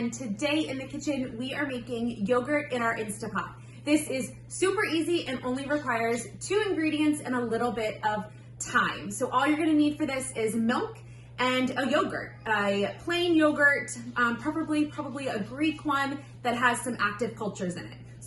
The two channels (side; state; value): both; identical; correlation 1.00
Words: today in the kitchen we are making yogurt in our Instapot. This is super easy and only requires 2 ingredients and a little bit of time. So all you're going to need for this is milk and a yogurt, a plain yogurt, probably a Greek one that has some active cultures in it.